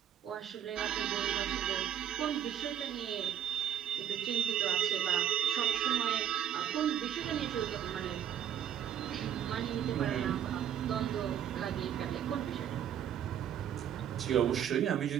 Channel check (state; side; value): quieter; left; 9.9 dB